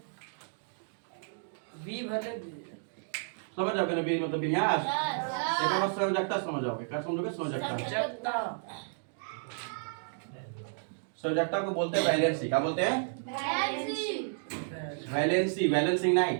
समझ जाओगे ना, मतलब विन्यास। एक बार संयोजकता समझ जाओगे। क्या समझोगे? संयोजकता। संयोजकता को बोलते हैं वैलेंसी। क्या बोलते हैं? वैलेंसी, वैलेंसिंग नहीं।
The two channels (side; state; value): left; silent; digital silence